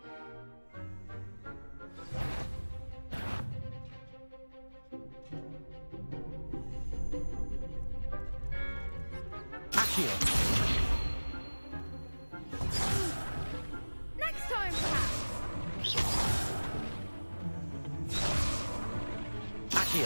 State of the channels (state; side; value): inverted; both; correlation -1.00